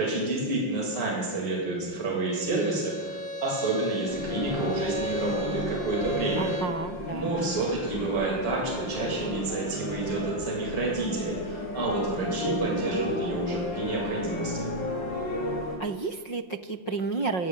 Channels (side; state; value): right; late; 5.5 ms